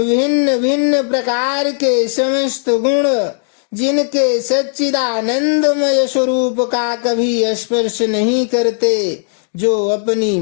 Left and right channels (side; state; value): right; silent; digital silence